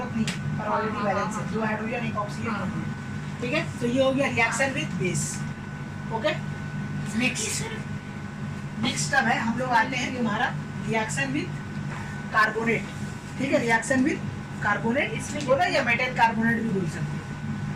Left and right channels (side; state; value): both; identical; correlation 1.00